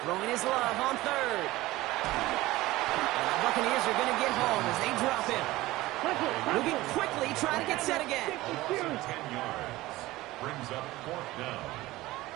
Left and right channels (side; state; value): left; quieter; 18.1 dB